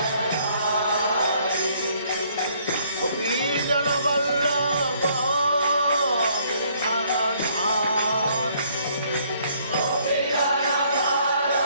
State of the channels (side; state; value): both; inverted; correlation -0.64